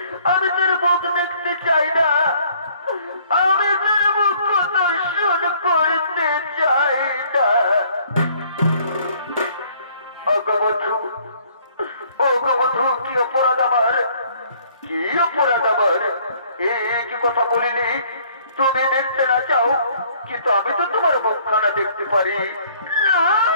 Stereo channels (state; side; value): inverted; both; correlation -0.60